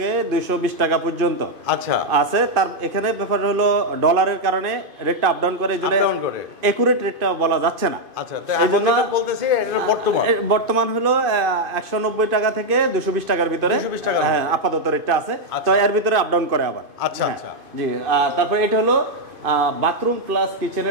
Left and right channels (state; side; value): late; left; 2.5 ms